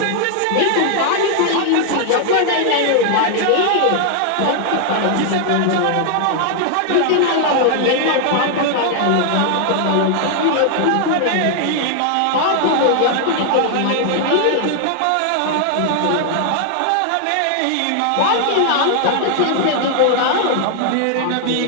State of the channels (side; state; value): both; different; correlation 0.00